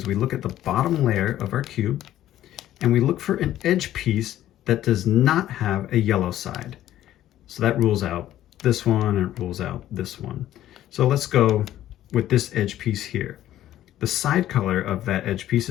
we look at the bottom layer of our cube and we look for an edge piece that does not have a yellow side. So that rules out this one and it rules out this one. So let's go with this edge piece here. The side color of that edge piece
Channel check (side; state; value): right; quieter; 12.9 dB